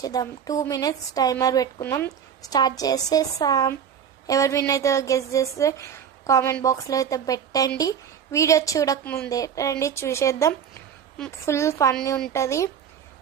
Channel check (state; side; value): quieter; left; 8.2 dB